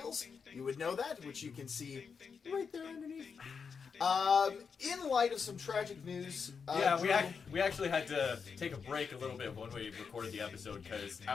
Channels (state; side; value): quieter; right; 5.9 dB